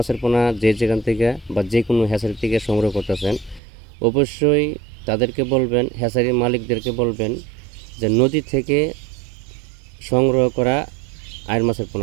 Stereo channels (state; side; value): drops out; left; at 3.6 s